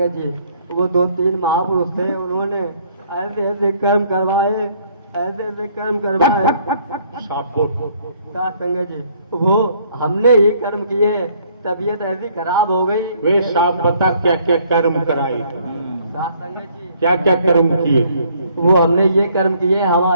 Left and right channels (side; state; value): both; inverted; correlation -0.63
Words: जी। वो 2-3 महापुरुष थे, उन्होंने ऐसे ऐसे कर्म करवाए, ऐसे ऐसे कर्म करवाए साथ संगत जी। वो हमने ही कर्म किए, तबीयत ऐसी खराब हो गई। वे साहब बता क्या क्या कर्म कराए साथ संगत जी? क्या क्या कर्म किए? वो हमने ये कर्म किए,